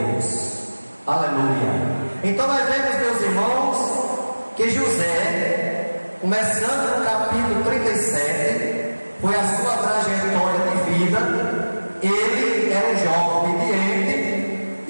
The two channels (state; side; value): inverted; both; correlation -1.00